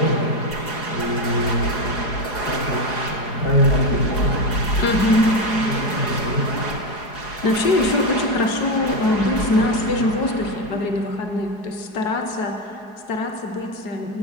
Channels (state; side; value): late; right; 4.8 ms